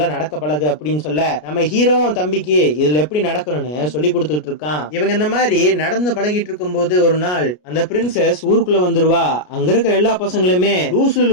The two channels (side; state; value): right; late; 33 ms